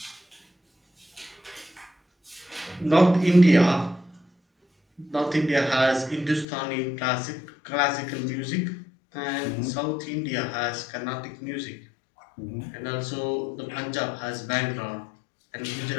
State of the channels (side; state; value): right; drops out; at 6.5 s